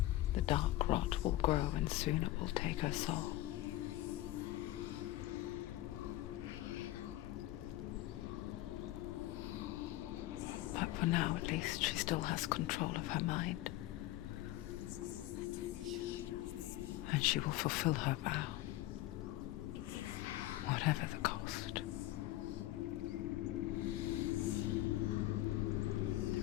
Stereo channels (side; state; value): right; quieter; 15.9 dB